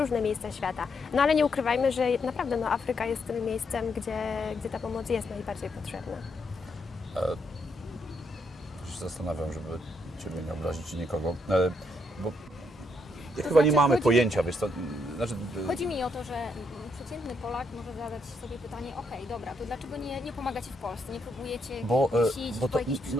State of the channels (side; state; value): both; normal; correlation 0.77